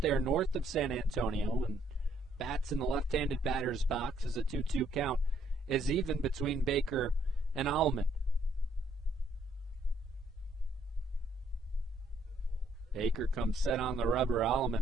there north of San Antonio, and bats in the left-handed batter's box as a 2-2 count is even between Baker and Alleman. Baker comes set on the rubber.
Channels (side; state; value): both; normal; correlation 0.68